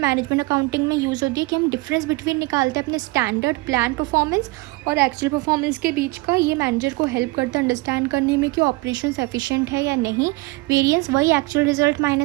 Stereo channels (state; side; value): quieter; left; 23.6 dB